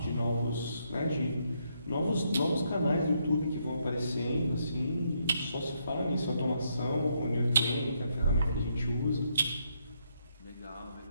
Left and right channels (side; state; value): both; inverted; correlation -0.76